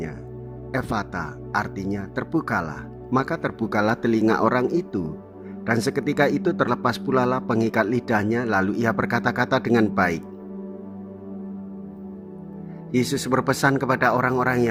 Ephata, artinya terbukalah. Maka terbukalah telinga orang itu. Dan seketika itu terlepas pula lah pengikat lidahnya, lalu ia berkata-kata dengan baik. Yesus berpesan kepada orang-orang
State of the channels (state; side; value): identical; both; correlation 1.00